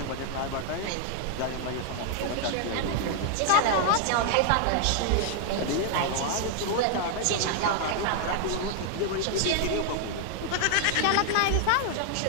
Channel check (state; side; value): different; both; correlation 0.00